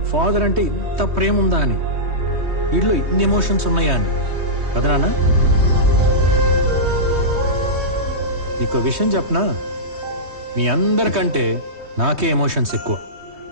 ఫాదర్ అంటే ఇంత ప్రేమ ఉందా అని, వీడిలో ఇన్ని ఎమోషన్స్ ఉన్నాయా అని కదా నాన్న? నీకో విషయం చెప్పనా, మీ అందరికంటే నాకే ఎమోషన్స్ ఎక్కువ.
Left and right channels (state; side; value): late; left; 3.2 ms